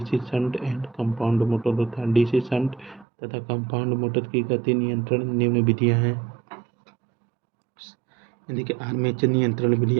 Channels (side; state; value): left; drops out; at 3.1 s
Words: shunt and compound motor होता है। डीसी शंट तथा कंपाउंड मोटर की गति नियंत्रण निम्न विधियां हैं। देखिए आर्मेचर नियंत्रण विधि,